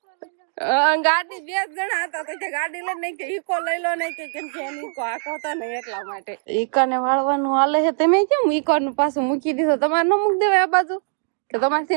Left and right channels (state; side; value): silent; left; 64 dB below the other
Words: ગાડી બે જણા હતા તો કે ગાડી લઈ નહીં કે ઈકો લઈ લો નહીં કે કેમ કે એની ઈકો આખો હતો ને એટલા માટે ઈકા ને વાળવાનું હાલે છે. તમે કેમ ઈકો નું પાછું મૂકી દીધો? તમારે ન મૂકી દેવાય આ બાજુ કે